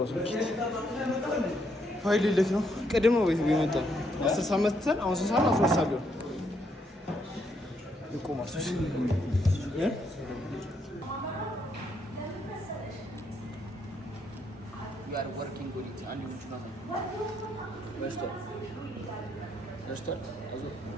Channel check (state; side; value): normal; both; correlation 0.74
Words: ሰው ፋይል ልክ ነው። ቅድም ነው ቤት ቢመጣ 10 ሰዓት መተን አሁን 3 ሰዓት 12 ሰዓት ቢሆን ይቆማል። ያር ወርኪንግ ኦዲት አንድ ልጅ ነው በስቷል አዞ